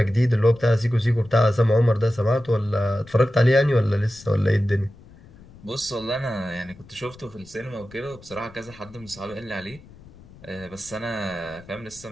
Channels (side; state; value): left; noise; rumble, 22 dB below the sound